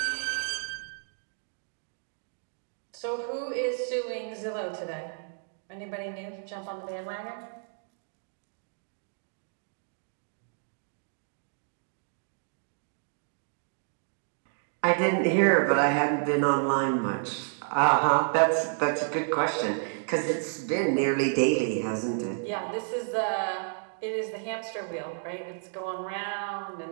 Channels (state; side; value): silent; left; digital silence